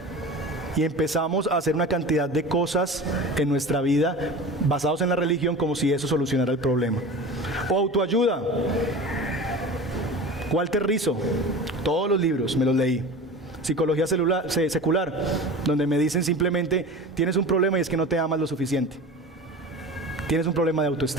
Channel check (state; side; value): normal; both; correlation 0.34